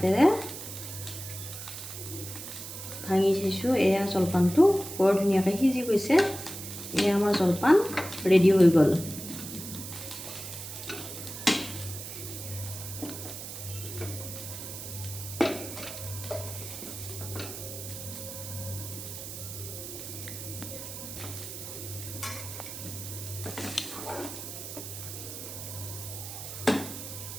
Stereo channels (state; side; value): noise; right; hiss, 9 dB below the sound